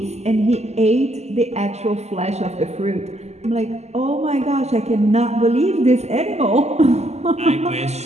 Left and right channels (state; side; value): late; left; 0.32 ms